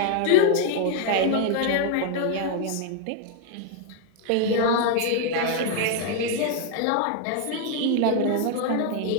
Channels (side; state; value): both; different; correlation 0.00